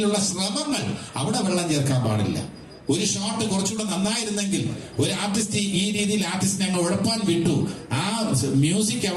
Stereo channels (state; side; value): identical; both; correlation 1.00